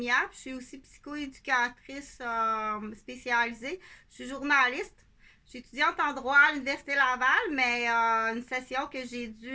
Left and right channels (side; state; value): both; identical; correlation 1.00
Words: Je suis aussi psychoéducatrice spécialisée. Je suis journaliste. Je suis étudiante en droit à l'Université Laval, mais une session que j'ai